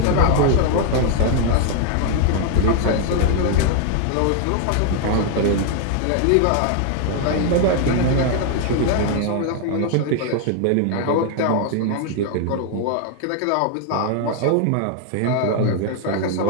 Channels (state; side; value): different; both; correlation 0.00